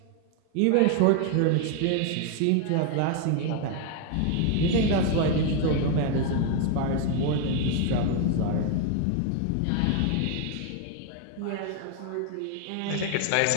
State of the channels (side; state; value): both; different; correlation 0.01